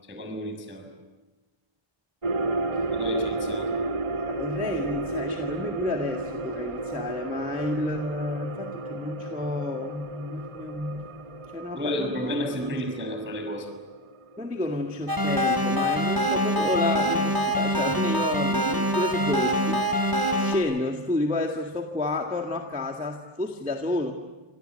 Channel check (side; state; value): left; late; 1.0 ms